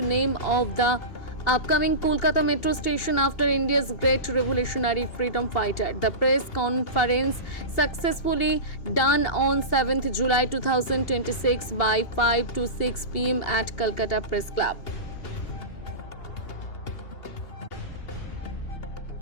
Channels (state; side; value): late; right; 2.7 ms